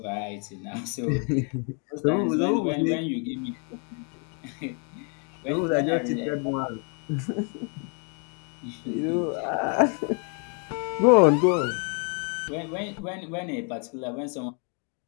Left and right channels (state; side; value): quieter; right; 39.5 dB